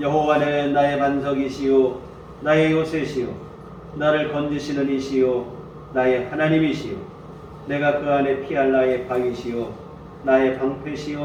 나의 반석이시요 나의 요새시요 나를 건지시는 이시요 나의 하나님이시요 내가 그 안에 피할 나의 방이시요 나의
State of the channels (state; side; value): identical; both; correlation 1.00